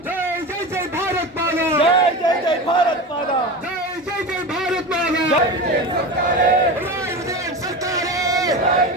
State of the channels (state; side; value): normal; both; correlation 0.26